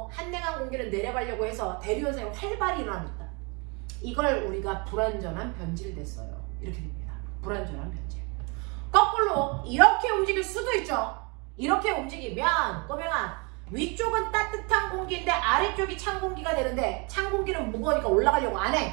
한냉한 공기를 내려가려고 해서 대류현상이 활발히 일어납니다. 이걸 우리가 불완전한 변질됐어요. 이렇게 됩니다. 불완전한 변질. 거꾸로 이렇게 움직일 수도 있죠. 이렇게 움직이면 꼬맹아 위쪽은 따뜻한 공기인데 아래쪽이 찬 공기가 되는데 찬 공기는 무거우니까 올라가려고 안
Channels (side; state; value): left; quieter; 31.3 dB